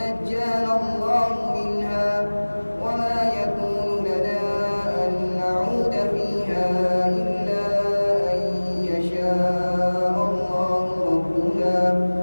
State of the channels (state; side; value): inverted; both; correlation -1.00